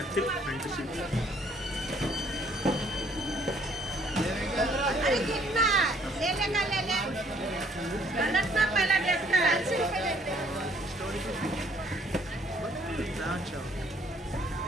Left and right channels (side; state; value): both; normal; correlation 0.63